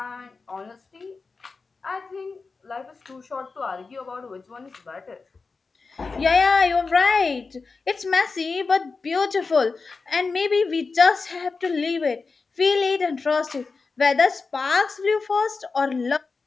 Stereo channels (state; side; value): quieter; right; 4.4 dB